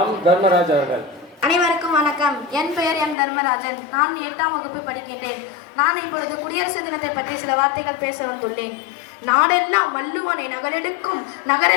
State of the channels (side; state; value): right; drops out; at 3.2 s